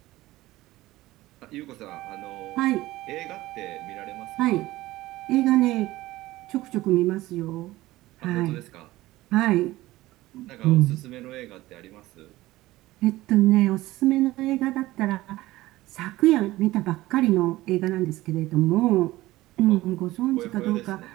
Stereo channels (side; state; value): left; quieter; 17.6 dB